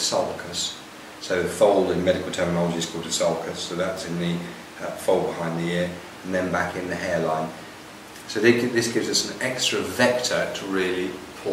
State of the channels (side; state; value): both; identical; correlation 1.00